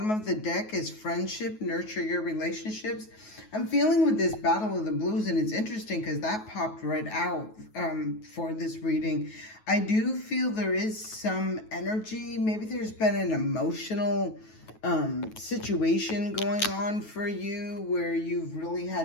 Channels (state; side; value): late; right; 9.3 ms